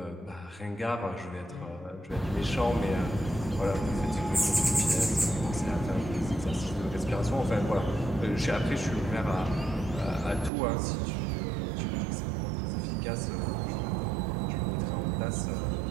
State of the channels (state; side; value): drops out; left; at 10.5 s